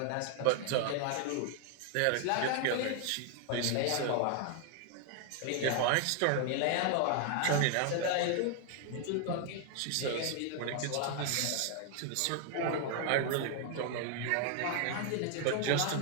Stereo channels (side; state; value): both; different; correlation 0.00